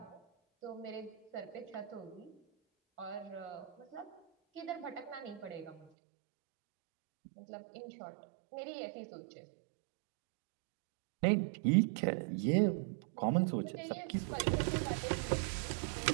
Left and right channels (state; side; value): drops out; left; at 5.9 s